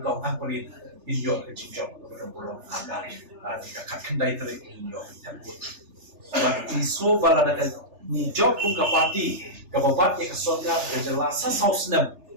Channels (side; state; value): left; late; 3.3 ms